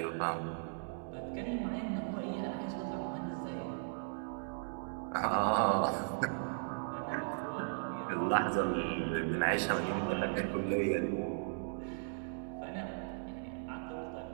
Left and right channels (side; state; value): left; silent; digital silence